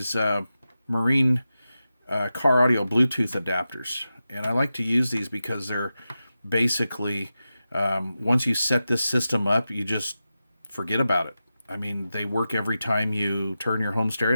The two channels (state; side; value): inverted; both; correlation -0.92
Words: marine car audio Bluetooth adapters. And I like to use these because they're basically, once you set this system up, you just forget about it. I mean, they work every time you turn your home